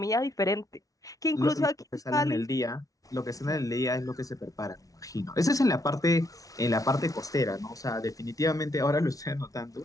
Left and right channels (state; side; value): late; right; 0.17 ms